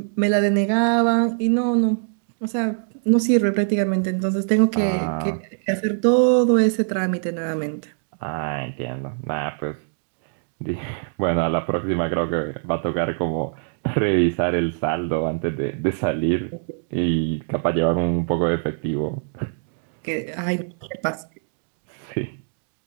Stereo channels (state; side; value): silent; left; digital silence